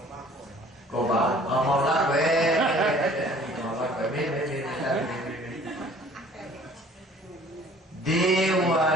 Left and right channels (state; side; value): normal; both; correlation 0.52